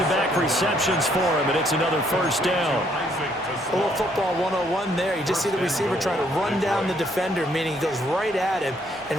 receptions for him, and it's another first down. a little football 101 there. You just see the receiver trying to run down the defender, meaning he goes right at him and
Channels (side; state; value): both; normal; correlation 0.68